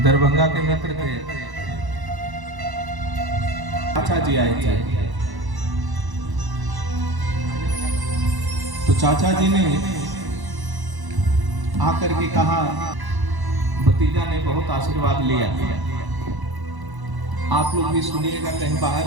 दरभंगा के मित्र थे, चाचा जी आए थे। तो चाचा जी ने आकर के कहा, भतीजा ने बहुत आशीर्वाद लिया, आप लोग भी सुनिएगा, कहीं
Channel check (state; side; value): late; left; 1.0 ms